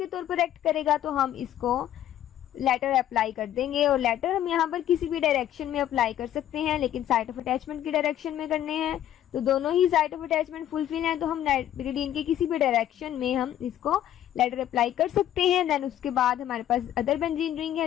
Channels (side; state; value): right; quieter; 11.7 dB